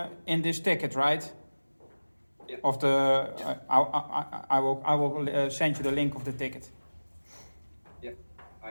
this ticket, right? Yeah. Of the I will send you the link of the ticket. yeah,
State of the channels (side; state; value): both; inverted; correlation -1.00